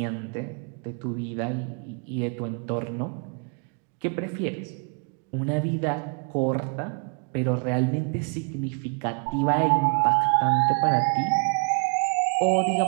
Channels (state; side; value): quieter; left; 38.0 dB